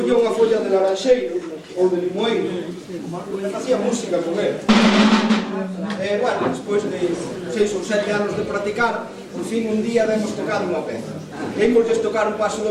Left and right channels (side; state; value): both; identical; correlation 1.00